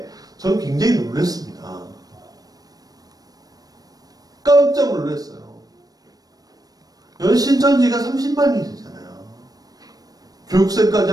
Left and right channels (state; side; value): late; left; 0.18 ms